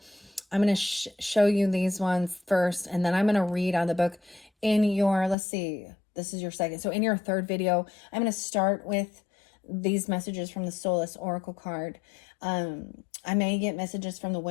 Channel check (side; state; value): right; drops out; at 5.4 s